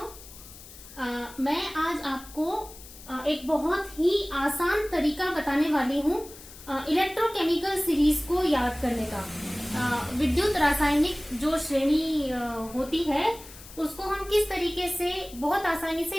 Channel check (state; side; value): noise; left; hiss, 18 dB below the sound